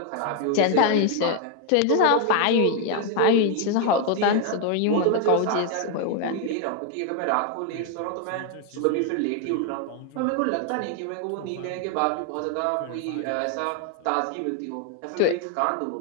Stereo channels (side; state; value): both; different; correlation 0.01